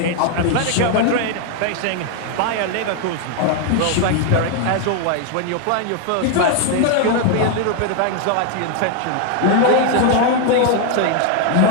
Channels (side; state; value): both; different; correlation 0.00